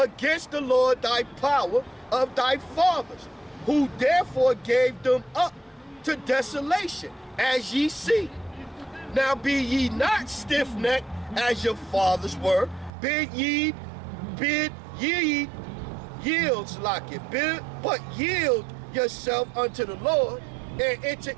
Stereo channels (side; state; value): left; drops out; at 12.9 s